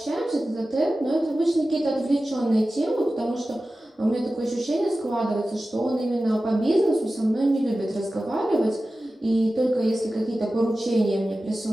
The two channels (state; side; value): normal; both; correlation 0.95